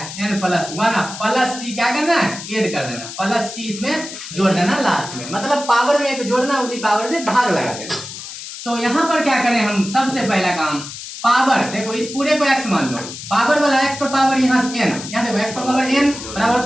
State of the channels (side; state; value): left; noise; hiss, 11 dB below the sound